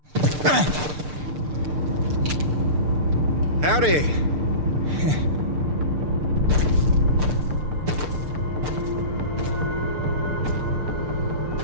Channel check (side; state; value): left; late; 6.7 ms